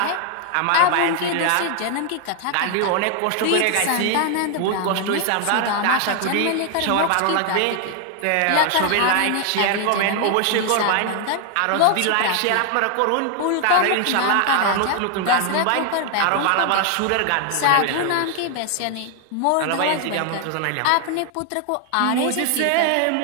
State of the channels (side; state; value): both; different; correlation 0.00